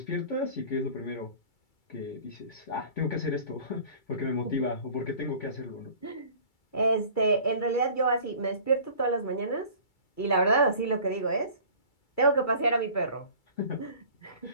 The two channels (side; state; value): right; late; 2.3 ms